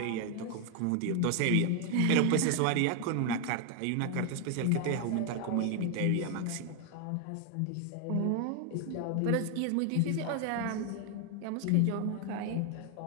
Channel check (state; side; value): different; both; correlation 0.01